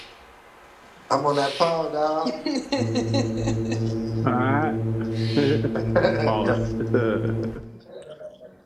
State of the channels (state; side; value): identical; both; correlation 1.00